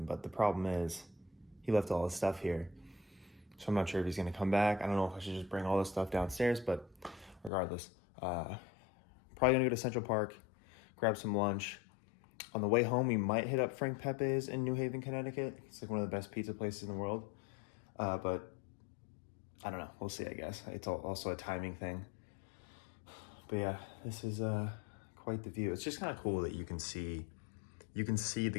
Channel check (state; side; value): drops out; right; at 7.5 s